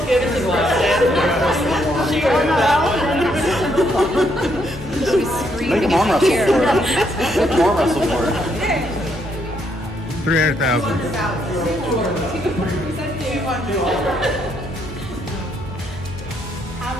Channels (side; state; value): both; normal; correlation 0.74